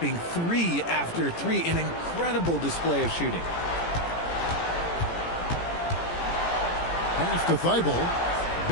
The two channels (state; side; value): late; right; 18 ms